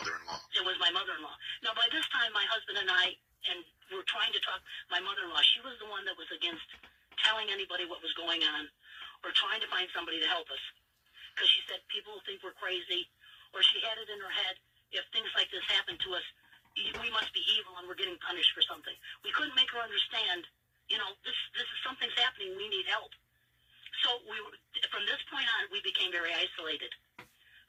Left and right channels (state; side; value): identical; both; correlation 1.00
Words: It was my mother-in-law. Now, by this time, my husband and I, and we're trying to talk, my mother-in-law, she was the one that was against telling anybody what was going on or trying to find somebody to help us. Because she said people will think we're crazy, or she had it in her head, if things like this happen to us, we must be evil and we're getting punished for something. We couldn't make her understand, this is something's happening, we need help. So from this point on, we became very isolated.